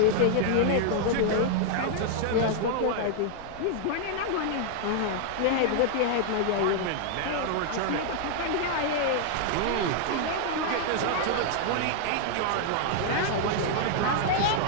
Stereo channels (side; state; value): both; different; correlation 0.00